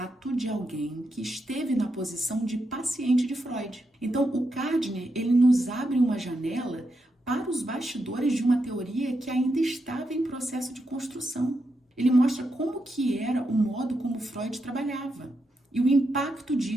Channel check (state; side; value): normal; both; correlation 0.84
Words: de alguém que esteve na posição de paciente de Freud. Então, o Gardner, ele nos abre uma janela para os bastidores de uma teoria que ainda estava em processo de construção. Ele mostra como que era o modo como Freud trabalhava e o impacto